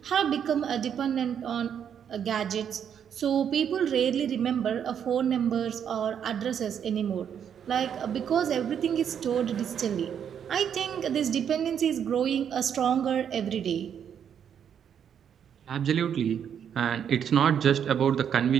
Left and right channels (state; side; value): quieter; left; 8.4 dB